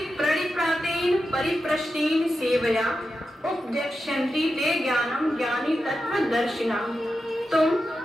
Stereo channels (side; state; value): both; normal; correlation 0.90